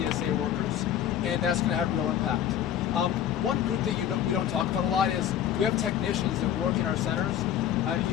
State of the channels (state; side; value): quieter; right; 10.2 dB